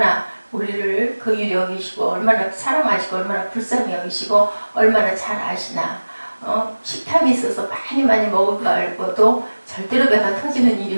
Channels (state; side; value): inverted; both; correlation -1.00